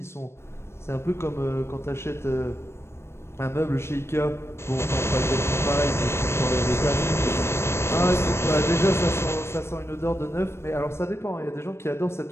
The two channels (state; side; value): late; right; 0.12 ms